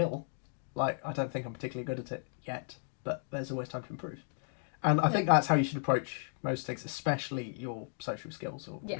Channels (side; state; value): right; silent; 55 dB below the other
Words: Like, I don't think I'm particularly good at it yet, but there's always time to improve. And I think that's how you should approach most things, especially your social skills or